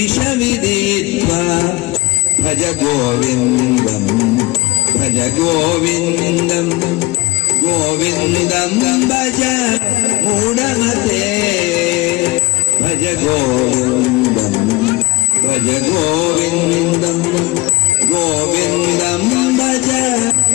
విదిత్వా భజ గోవిందం భజ గోవిందం గోవిందం భజ మూఢమతే భజ గోవిందం భజ గోవిందం గోవిందం భజ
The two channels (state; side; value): quieter; right; 21.1 dB